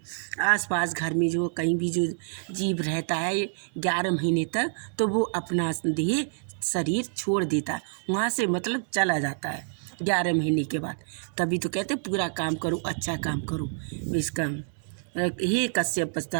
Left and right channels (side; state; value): left; silent; digital silence